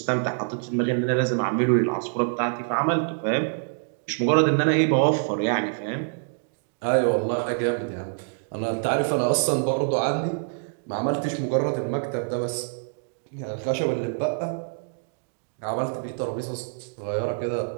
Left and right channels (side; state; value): left; silent; digital silence